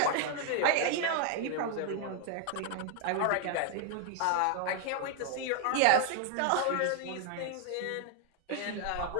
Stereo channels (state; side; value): different; both; correlation 0.00